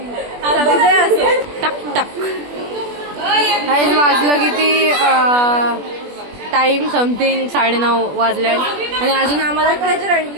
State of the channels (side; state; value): left; late; 21 ms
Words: असो टक टक. गाईज वाजलं किती टाइम समथिंग 9:30 वाजल्यात आणि अजून आम्हाला ट्रेजर हंट